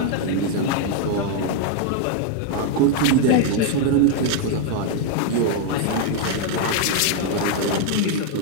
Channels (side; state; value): both; different; correlation 0.00